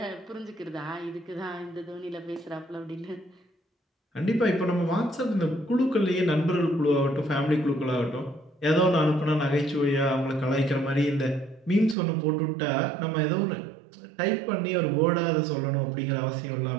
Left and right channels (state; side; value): drops out; left; at 12.0 s